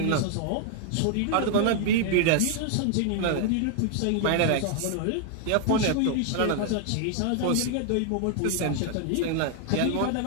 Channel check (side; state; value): both; different; correlation 0.00